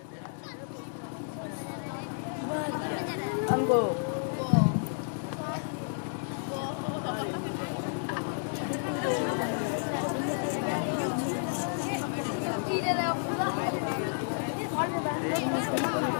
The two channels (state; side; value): silent; right; digital silence